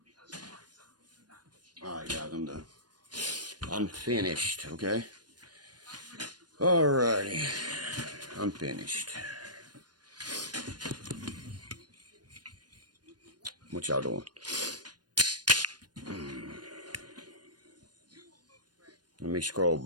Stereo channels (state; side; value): late; left; 0.69 ms